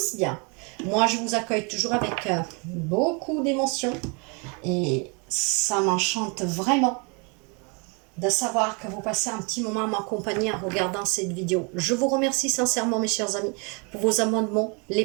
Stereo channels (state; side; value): quieter; left; 32.9 dB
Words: bien. Moi je vous accueille toujours avec beaucoup d'émotion et ça m'enchante vraiment de savoir que vous passez un petit moment à m'accompagner en regardant cette vidéo. Je vous remercie sincèrement mes chers amis pour vos abonnements, les